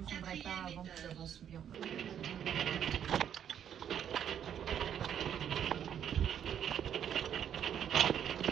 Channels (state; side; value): quieter; left; 9.2 dB